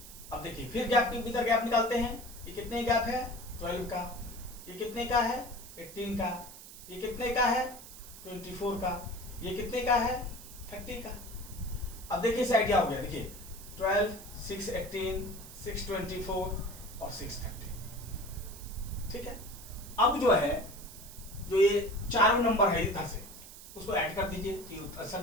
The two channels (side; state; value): right; noise; hiss, 15 dB below the sound